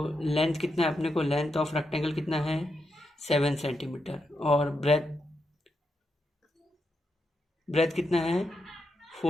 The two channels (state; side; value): normal; both; correlation 0.84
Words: लेंथ कितना है अपने को, लेंथ ऑफ रेक्टेंगल कितना है 7 सेंटीमीटर और ब्रेथ कितना है